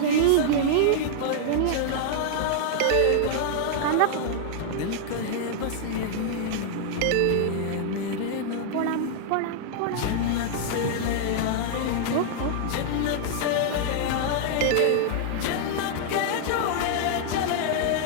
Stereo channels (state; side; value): different; both; correlation -0.01